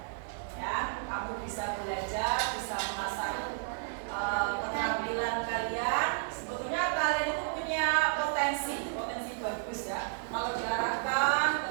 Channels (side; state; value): left; silent; digital silence